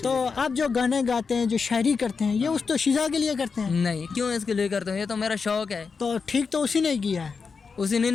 आप जो गाने गाते हैं, जो शायरी करते हैं, ये उस दोशीज़ा के लिए करते हैं? नहीं, क्यों इसके लिए करता हूँ, ये तो मेरा शौक है। तो ठीक तो उसी ने किया है। उसी ने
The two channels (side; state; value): right; quieter; 5.2 dB